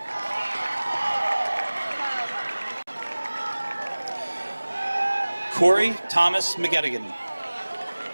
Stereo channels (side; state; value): both; inverted; correlation -1.00